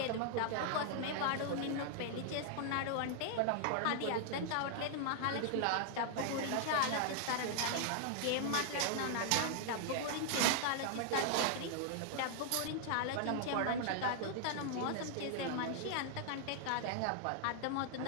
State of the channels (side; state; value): both; different; correlation 0.00